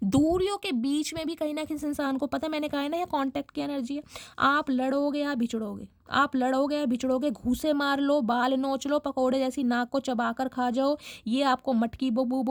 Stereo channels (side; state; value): both; identical; correlation 1.00